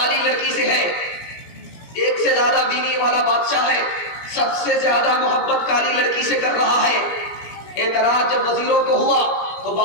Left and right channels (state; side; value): late; right; 17 ms